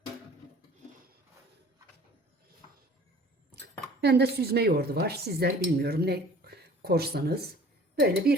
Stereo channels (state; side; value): normal; both; correlation 0.49